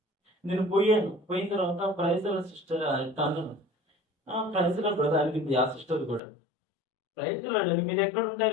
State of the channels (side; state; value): right; drops out; at 6.2 s